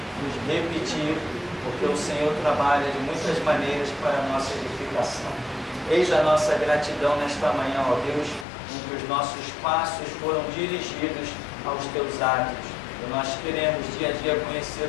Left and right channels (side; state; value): right; drops out; at 8.5 s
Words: nos repetir, porque o Senhor trabalha de muitas maneiras para a nossa edificação. Eis a nossa gratidão nesta manhã, ó Deus, em que os nossos passos foram dirigidos aos teus atos. E nós queremos dia a dia